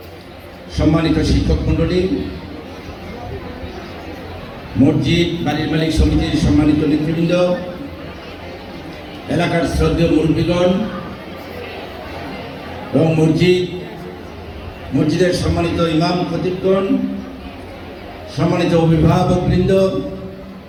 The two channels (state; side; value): identical; both; correlation 1.00